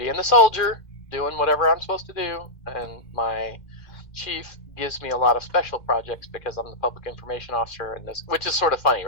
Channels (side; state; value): right; late; 2.1 ms